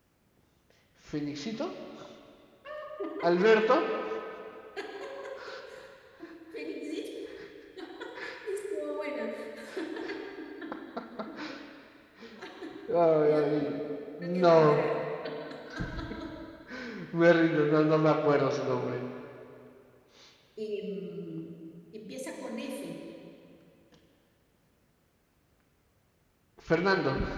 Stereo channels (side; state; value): both; identical; correlation 1.00